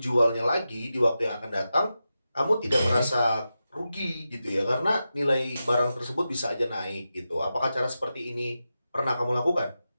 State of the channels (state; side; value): inverted; both; correlation -0.91